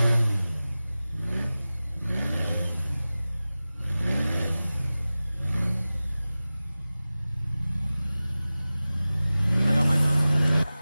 I got my gun.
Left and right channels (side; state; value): both; inverted; correlation -0.97